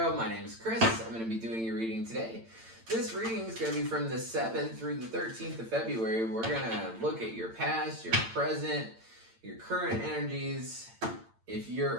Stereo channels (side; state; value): left; late; 8.9 ms